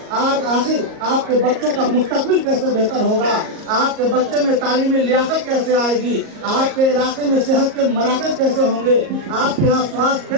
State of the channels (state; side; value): late; left; 38 ms